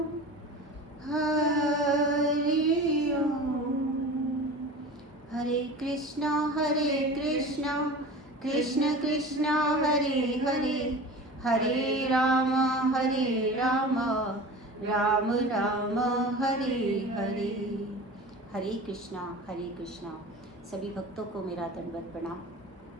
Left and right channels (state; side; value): normal; both; correlation 0.35